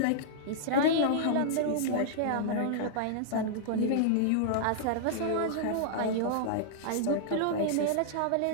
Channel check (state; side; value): different; both; correlation -0.02